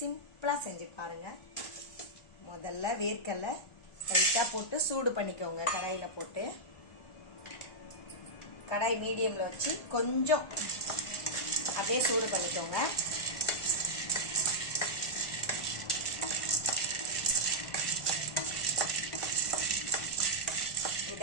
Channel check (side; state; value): right; late; 1.4 ms